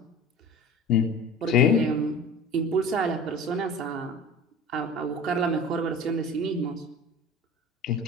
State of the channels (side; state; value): both; normal; correlation 0.38